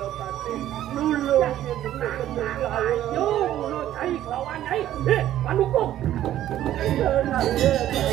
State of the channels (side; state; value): left; quieter; 12.5 dB